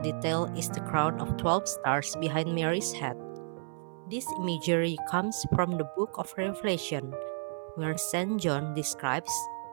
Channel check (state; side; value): silent; left; 56 dB below the other